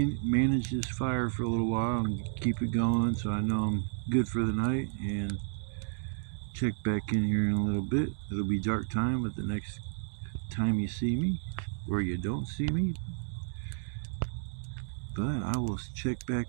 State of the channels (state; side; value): silent; left; digital silence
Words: manage this fire for a little while and keep it going so I know I'm good for the night, and check back in here in a little bit. It'll be dark time at the next time you see me, or you don't see me. But I will check back